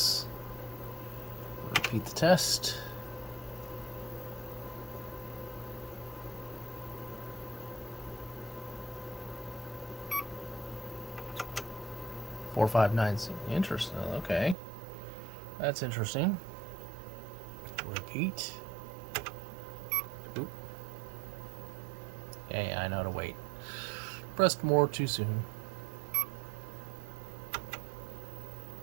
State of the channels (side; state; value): left; drops out; at 14.6 s